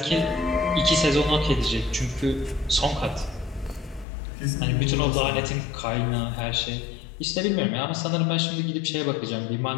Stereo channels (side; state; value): right; drops out; at 4.0 s